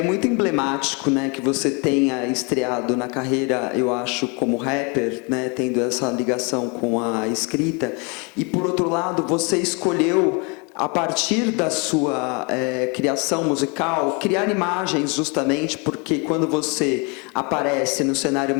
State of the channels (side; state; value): right; quieter; 31.7 dB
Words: muito emblemático, né, que você tenha estreado na carreira, eu acho, como rapper, né, tendo essa ligação com a escrita. E por outro lado, você escolheu, a partir da sua criação musical, criar imagens, justamente porque quando você aparece no cenário